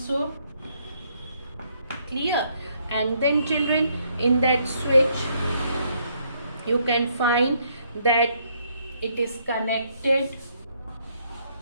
Clear? And then, children, in that switch you can find that it is connected.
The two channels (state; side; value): inverted; both; correlation -0.71